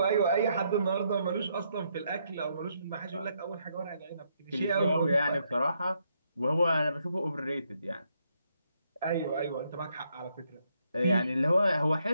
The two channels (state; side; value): inverted; both; correlation -0.75